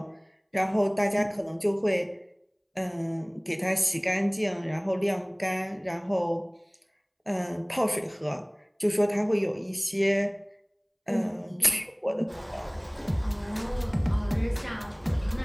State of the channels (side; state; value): both; identical; correlation 1.00